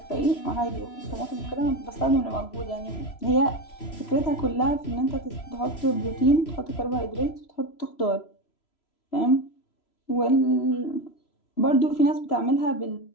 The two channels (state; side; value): late; right; 3.0 ms